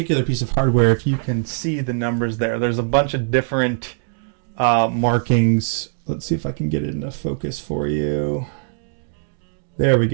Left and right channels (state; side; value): silent; left; 62 dB below the other